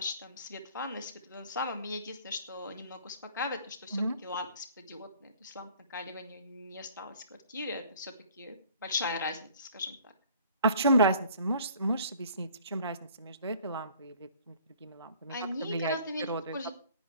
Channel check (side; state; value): both; inverted; correlation -0.53